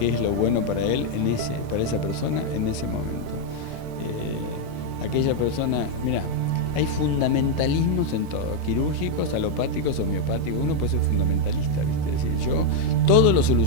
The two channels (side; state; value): left; late; 30 ms